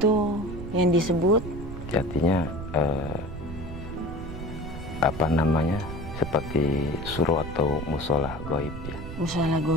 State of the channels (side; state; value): right; noise; rumble, 10 dB below the sound